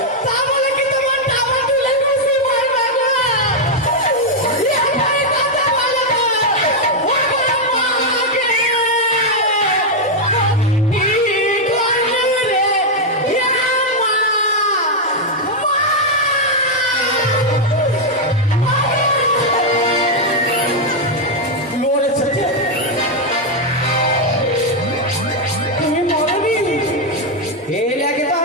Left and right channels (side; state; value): both; normal; correlation 0.00